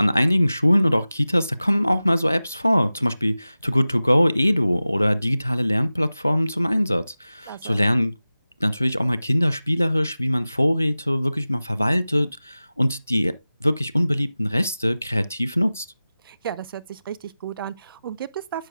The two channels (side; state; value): both; inverted; correlation -0.97